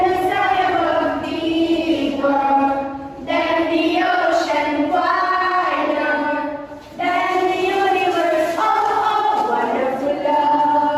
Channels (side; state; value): both; identical; correlation 1.00